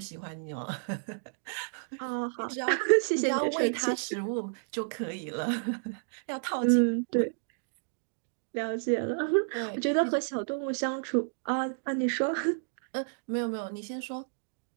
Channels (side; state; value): left; silent; digital silence